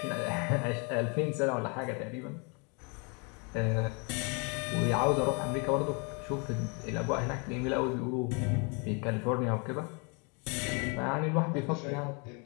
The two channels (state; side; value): quieter; right; 34.1 dB